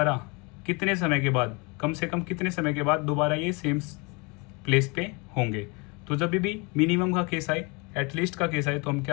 कितने समय के बाद, कम से कम कितने समय के बाद दोबारा ये सेम प्लेस पे होंगे। तो जब भी मिनिमम का केस आए, एटलीस्ट का केस आए, तो हम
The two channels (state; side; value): quieter; right; 29.3 dB